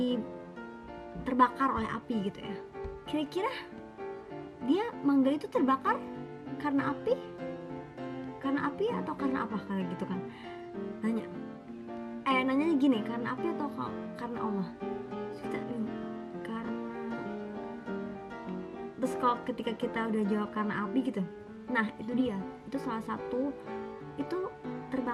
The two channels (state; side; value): identical; both; correlation 1.00